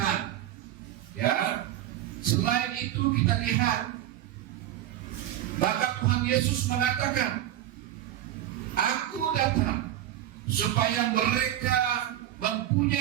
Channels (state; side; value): quieter; left; 12.5 dB